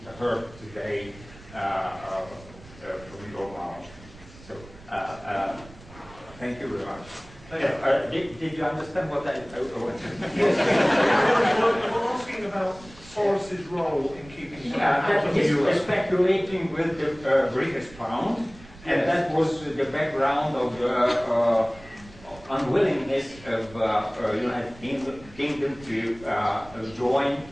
heard today from your mouth. So, thank you very much. Did you understand what I wanted? Yes. We're asking about Soros's role in keeping out of the euro. He's speculating with the British pound, and that was the background of the unwillingness of United Kingdom to join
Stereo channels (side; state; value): right; noise; rumble, 21 dB below the sound